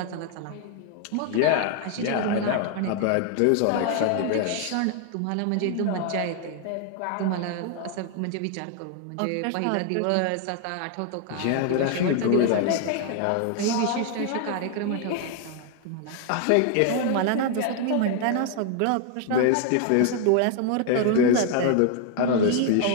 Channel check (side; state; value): both; different; correlation 0.00